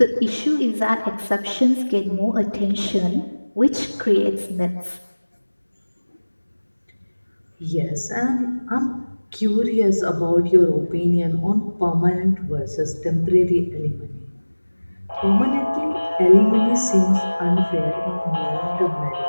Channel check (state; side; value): inverted; both; correlation -1.00